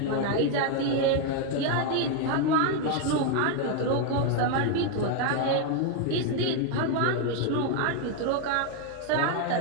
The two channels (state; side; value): different; both; correlation 0.01